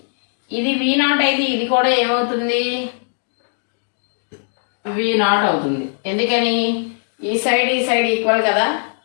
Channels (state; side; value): silent; right; digital silence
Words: ఇది V0 అయితే ఇది కూడా ఏమవుతుంది? V0 అవుతుంది. ఎందుకని? ఈ సైడ్ ఈక్వల్ కదా.